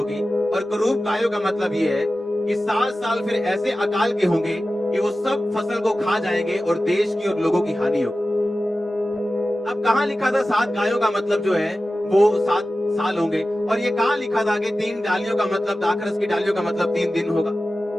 और कुरूप गायों का मतलब ये है कि 7 साल फिर ऐसे अकाल के होंगे कि वो सब फसल को खा जाएंगे और देश की और लोगों की हानि होगी। अब कहां लिखा था 7 गायों का मतलब जो है वो 7 साल होंगे, और ये कहां लिखा था कि 3 डालियों का मतलब, दाखरस की डालियों का मतलब 3 दिन होगा?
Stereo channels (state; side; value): normal; both; correlation 0.95